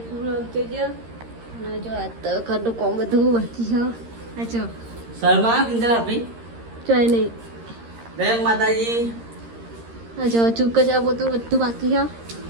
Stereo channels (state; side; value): late; left; 13 ms